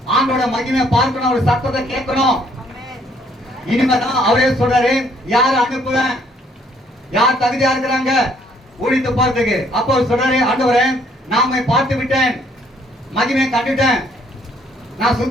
ஆண்டோட மகிமை பார்க்கணும், அவர் சத்தத்தை கேட்கணும். இனிமேதான் அவரே சொல்றாரு, யார் அனுப்புவேன், யார் தகுதியா இருக்கிறாங்க ஊழித்து போறதுக்கு. அப்போ அவர் சொல்றாரு, ஆண்டவரே நாம பார்த்து விட்டேன், மகிமை கண்டுட்டேன், நான்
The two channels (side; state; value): both; normal; correlation 0.65